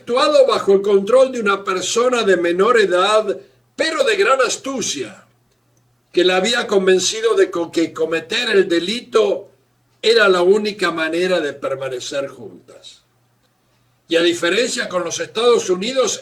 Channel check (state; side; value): identical; both; correlation 1.00